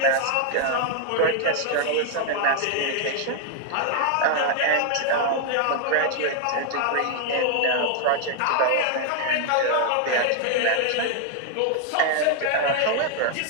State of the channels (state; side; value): different; both; correlation 0.00